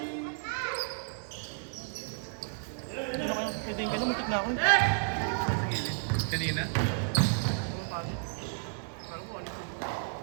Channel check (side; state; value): left; silent; digital silence